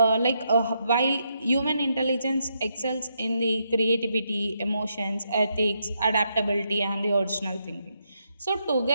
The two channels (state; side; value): inverted; both; correlation -0.79